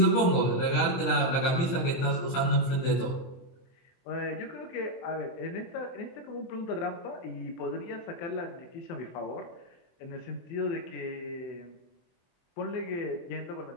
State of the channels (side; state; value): right; late; 24 ms